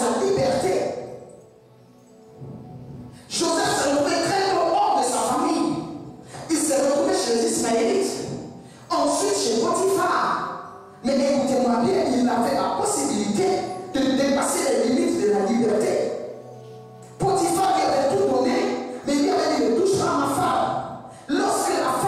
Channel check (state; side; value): identical; both; correlation 1.00